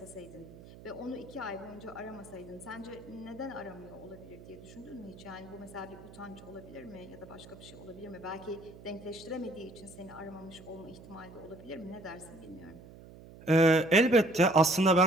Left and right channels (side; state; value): right; noise; hum, 18 dB below the sound